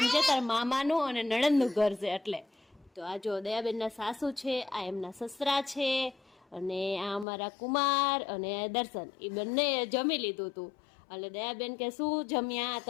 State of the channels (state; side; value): drops out; right; at 7.2 s